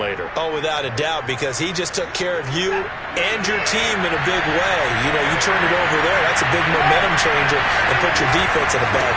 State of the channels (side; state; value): both; identical; correlation 1.00